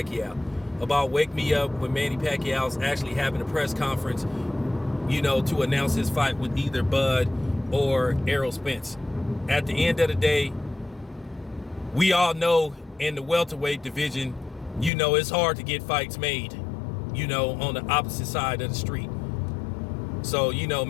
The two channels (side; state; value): right; drops out; at 14.9 s